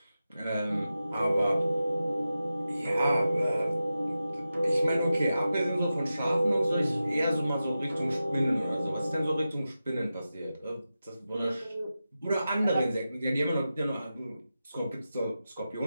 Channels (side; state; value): both; inverted; correlation -0.92